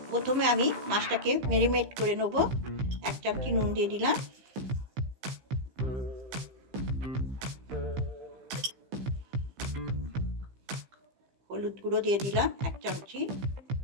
প্রথমে আমি মাছটাকে ম্যারিনেট করে নেব। 1 চামচি নুন দিয়ে দিলাম, হলুদ গুঁড়ো দিয়ে দিলাম 1 চামচি,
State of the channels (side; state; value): left; late; 15 ms